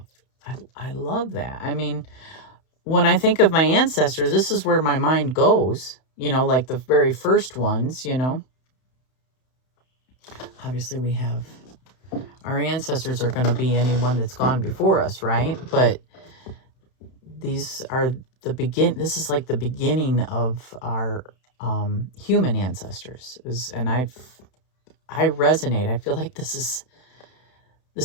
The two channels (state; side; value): late; right; 31 ms